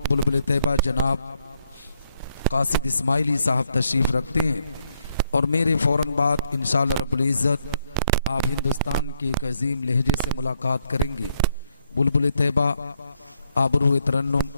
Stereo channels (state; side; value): inverted; both; correlation -0.75